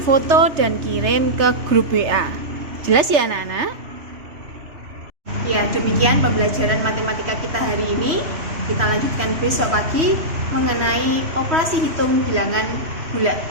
dan kirim ke grup WA. Jelas ya anak-anak? Ya, demikian pembelajaran matematika kita hari ini. Kita lanjutkan besok pagi mengenai operasi hitung bilangan bulat.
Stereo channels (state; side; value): late; left; 3.1 ms